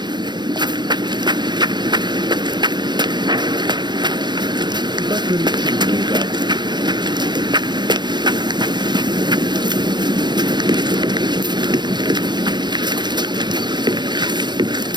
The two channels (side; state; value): left; late; 0.21 ms